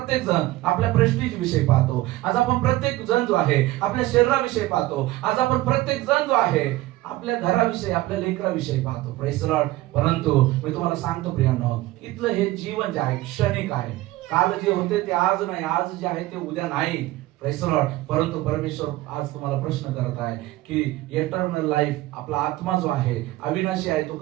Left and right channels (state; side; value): quieter; left; 17.5 dB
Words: जण आपल्या प्रेस्टीज विषयी पाहतो. आज आपण प्रत्येक जण जो आहे आपल्या शरीराविषयी पाहतो. आज आपण प्रत्येक जण जो आहे आपल्या घराविषयी, आपल्या लेकराविषयी पाहतो. Praise the Lord. परंतु मी तुम्हाला सांगतो प्रियांनो, इथलं हे जीवन जे आहे क्षणिक आहे. काल जे होते ते आज नाही, आज जे आहे ते उद्या नाही. Praise the Lord. परंतु परमेश्वर आज तुम्हाला प्रश्न करत आहे की इटर्नल लाईफ, आपला आत्मा जो आहे अविनाशी आहे, तो